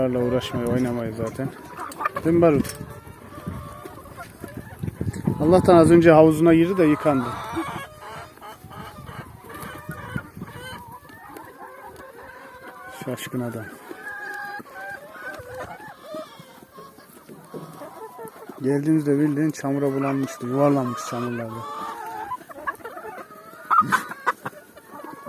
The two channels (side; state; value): both; identical; correlation 1.00